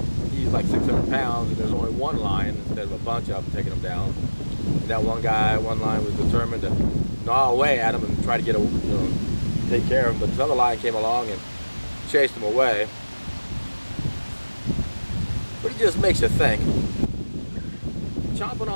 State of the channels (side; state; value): both; inverted; correlation -1.00